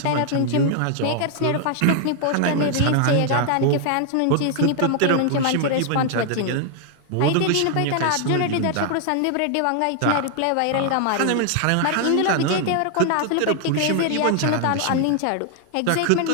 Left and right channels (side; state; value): both; different; correlation 0.00